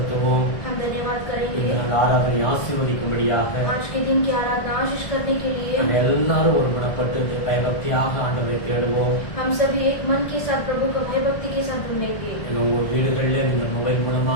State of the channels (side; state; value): right; late; 1.7 ms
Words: हम धन्यवाद करेंगे. இந்த நாள் ஆராதனை ஆசீர்வதிக்கும்படியாக आज के दिन की आराधना आशीष करने के लिए நம்ம எல்லாரும் ஒருமனப்பட்டு பயபக்தியாக ஆண்டவரை தேடுவோம். हम सभी एक मन के साथ प्रभु को भयभक्ति के साथ ढूंढेंगे. உங்க வீடுகளில் நீங்க மொபைல்